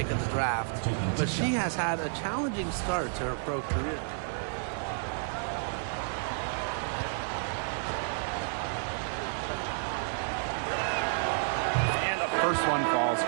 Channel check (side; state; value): left; silent; 57 dB below the other